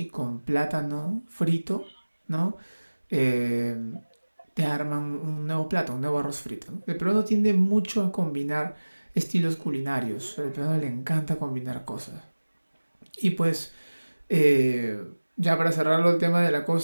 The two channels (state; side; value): inverted; both; correlation -1.00